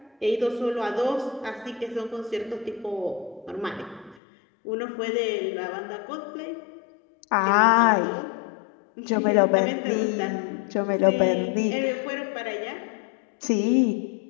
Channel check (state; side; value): drops out; right; at 4.2 s